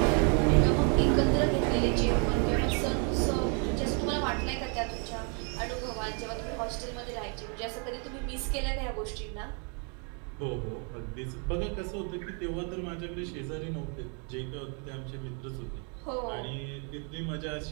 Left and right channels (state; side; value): quieter; left; 38.0 dB